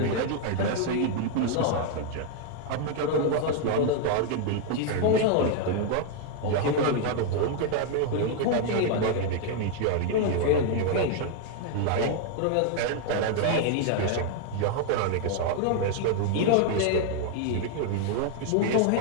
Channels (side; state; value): both; different; correlation 0.00